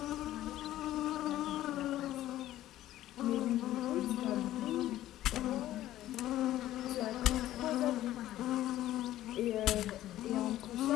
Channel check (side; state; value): right; quieter; 14.0 dB